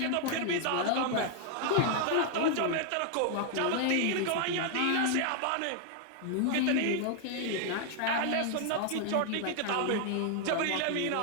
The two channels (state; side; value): different; both; correlation 0.00